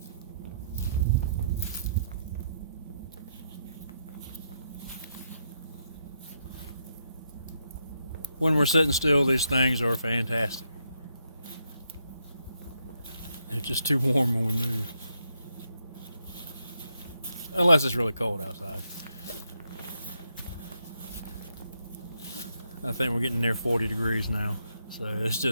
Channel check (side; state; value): both; inverted; correlation -0.79